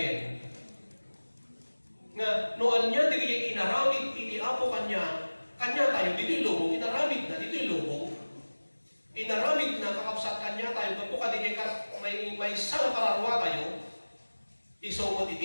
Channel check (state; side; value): inverted; both; correlation -1.00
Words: nga noon niya, di inaramid, iti Apo kanya tayo, dito'y lubong, inaramid na, dito'y lubong, inaramid na, kakabsat kanya tayo, kapag may sana kararwa tayo, isumot